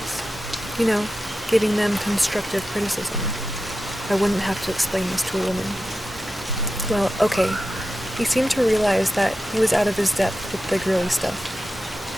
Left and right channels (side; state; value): both; normal; correlation 0.91